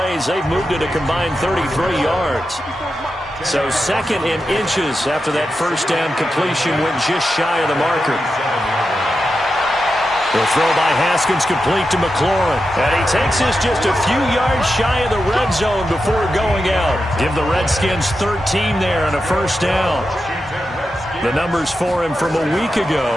They've moved it a combined 33 yards. So 2nd in inches after that 1st down completion went just shy of the marker. The throw by Haskins complete to McLaurin. And he takes this just a few yards shy of the red zone before going out. Give the Redskins 13 there on a 1st down. The numbers for him from a week ago.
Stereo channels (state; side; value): normal; both; correlation 0.89